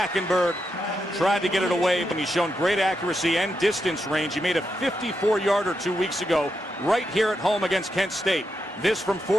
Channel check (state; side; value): normal; both; correlation 0.84